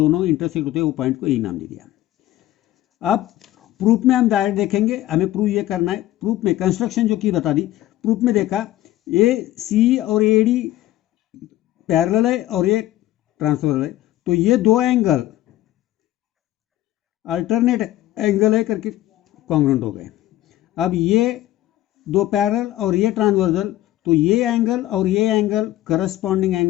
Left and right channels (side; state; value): right; quieter; 14.7 dB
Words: इंटरसेक्ट होते हैं वो पॉइंट को A नाम दे दिया। अब प्रूफ में हम डायरेक्ट देखेंगे, हमें प्रूफ ये करना है। प्रूफ में कंस्ट्रक्शन जो की बता दी, प्रूफ में देखा AC और AD पैरेलल है और ये ट्रांसफर है, तो ये दो एंगल अल्टरनेट एंगल है करके कॉन्ग्रुएंट हो गए। अब ये दो पैरेलल और ये ट्रांसवर्सल, तो ये एंगल और ये एंगल करस्पॉन्डिंग